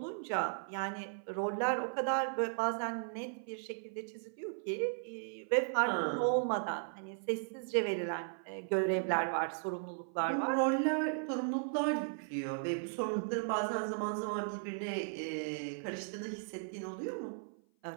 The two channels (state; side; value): silent; left; 53 dB below the other